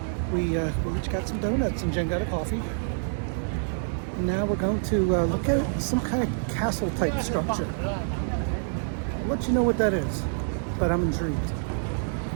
we each got some donuts, and Jen got a coffee. And now we're going to look at some kind of castle type structure. I'll let you know what that is, but I'm intrigued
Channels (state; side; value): silent; left; digital silence